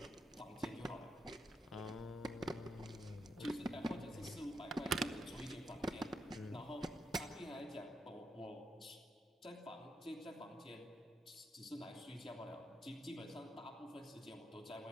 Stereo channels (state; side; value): normal; both; correlation 0.81